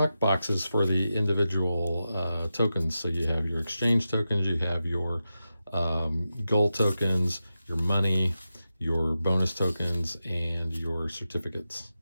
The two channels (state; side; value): inverted; both; correlation -0.91